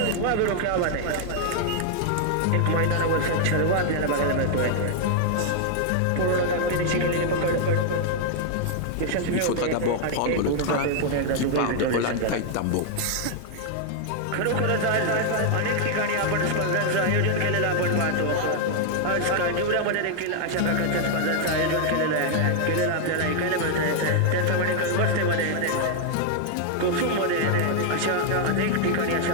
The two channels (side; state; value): both; different; correlation 0.00